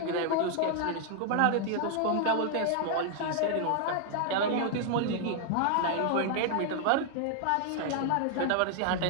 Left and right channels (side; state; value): both; different; correlation 0.00